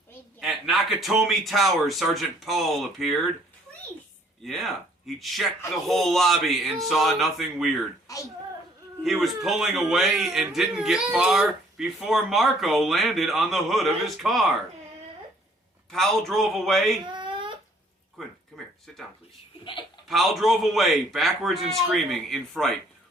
At Nakatomi Tower, Sergeant Paul appeared. Yeah, he checked the whole lobby and saw nothing weird. He was pulling away and didn't get far. before Marco landed on the hood of his car. Pal drove away. Quinn, come here. Sit down, please. Pal drove away, backwards and screaming in fright.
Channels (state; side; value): normal; both; correlation 0.61